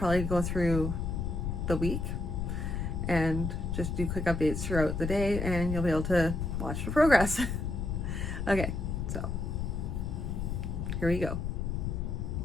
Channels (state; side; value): noise; left; rumble, 2 dB below the sound